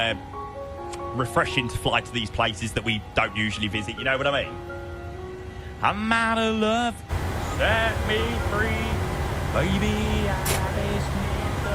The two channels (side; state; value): both; identical; correlation 1.00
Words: refreshing to fly to these places that we don't usually visit. You know what I mean? I'm out of love. Set me free, baby.